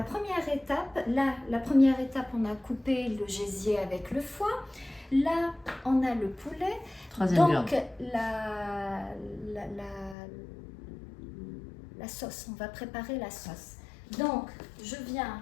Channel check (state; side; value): drops out; right; at 10.2 s